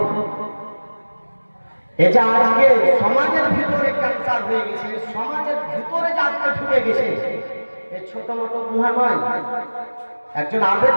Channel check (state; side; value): inverted; both; correlation -1.00